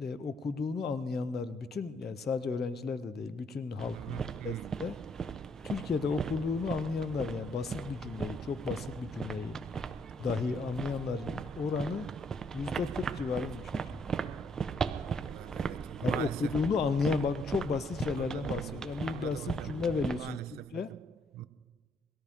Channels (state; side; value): normal; both; correlation 0.69